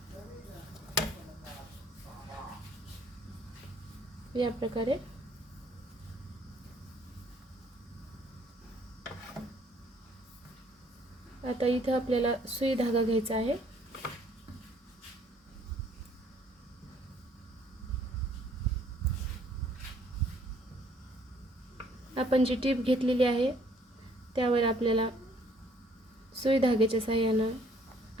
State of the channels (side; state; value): both; normal; correlation 0.62